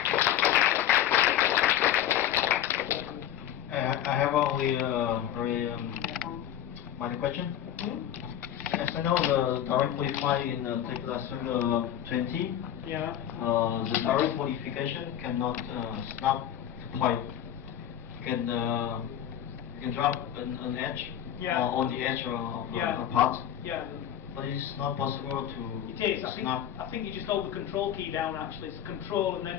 I have only one question. As I know, the direct qualify in Tekla Userday 20, Yeah. the direct modification cannot snap the point. You can drop an edge on the edge of a part. Yeah. But it's not possible to It is. snap. I think you just hold the control key down actually. It's control and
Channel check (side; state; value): right; quieter; 10.7 dB